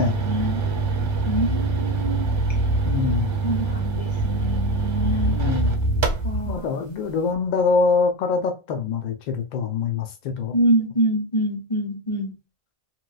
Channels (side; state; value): right; late; 1.3 ms